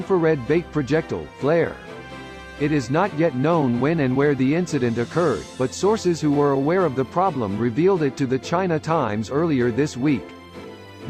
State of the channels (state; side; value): identical; both; correlation 1.00